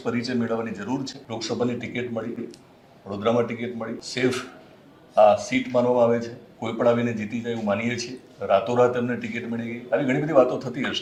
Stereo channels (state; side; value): identical; both; correlation 1.00